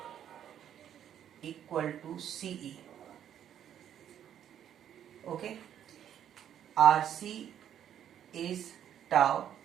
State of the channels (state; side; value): quieter; left; 10.0 dB